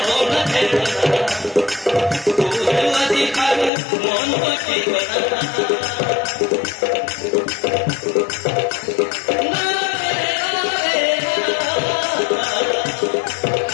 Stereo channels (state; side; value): drops out; right; at 3.7 s